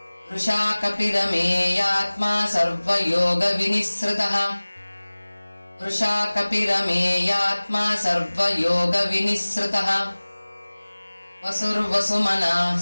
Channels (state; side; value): inverted; both; correlation -1.00